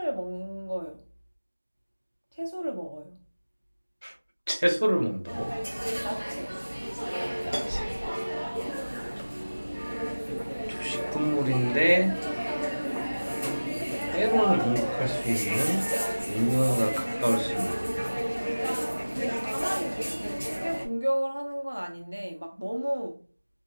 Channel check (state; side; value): inverted; both; correlation -1.00